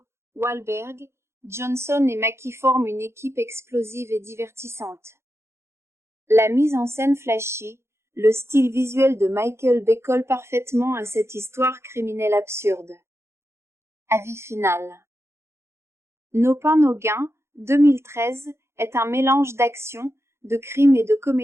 Wahlberg, Johnson et Mackie forment une équipe explosive et divertissante. La mise en scène flashy, le style visuel de Michael Bay colle parfaitement à cette histoire criminelle absurde. Avis final. Nos pains, nos gains, 2013, est un mélange d'action, de crime et de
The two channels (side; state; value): left; late; 0.13 ms